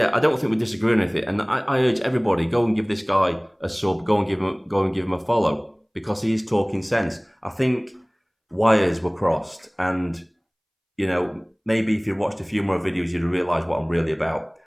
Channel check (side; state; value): both; identical; correlation 1.00